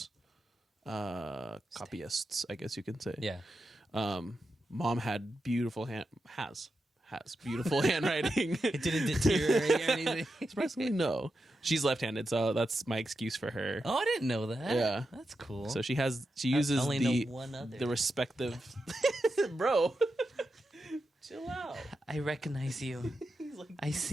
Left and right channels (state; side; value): normal; both; correlation 0.88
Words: copyists, I guess you can say. Yeah. Mom had beautiful has beautiful handwriting. It didn't deteriorate or anything. Surprisingly, no. She's left-handed, so that's my excuse for her. Oh, I didn't know that. Yeah. That's cool. So she uses I only know one other. the respective bro. Chill out. I recognize you. He's like, I